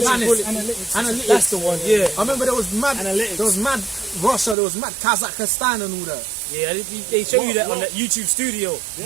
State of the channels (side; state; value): left; drops out; at 4.5 s